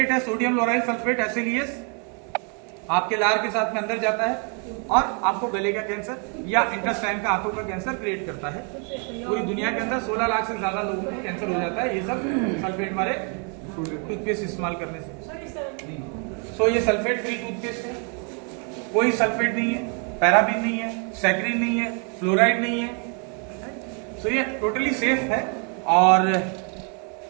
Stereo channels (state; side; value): quieter; left; 38.4 dB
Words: है, सोडियम लोराइल सल्फेट, SLES, आपके लार के साथ में अंदर जाता है और आपको गले का कैंसर या इंटेस्टाइन का, आंतों का कैंसर क्रिएट करता है। पूरी दुनिया के अंदर 16 लाख से ज्यादा लोगों को कैंसर हो जाता है, ये सब सल्फेट वाले टूथपेस्ट इस्तेमाल करने से। सो ये सल्फेट फ्री टूथपेस्ट है, कोई सल्फेट नहीं है, पैराबीन नहीं है, सैक्रीन नहीं है, फ्लोराइड नहीं है। सो ये टोटली सेफ है और